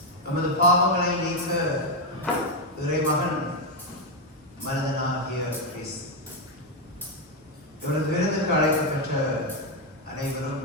நமது பாவங்களை நீக்க இறைமகன் மனிதனாகிய கிறிஸ்து. இவரது விருதுக்கு அழைக்கப்பட்ட அனைவரும்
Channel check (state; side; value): normal; both; correlation 0.05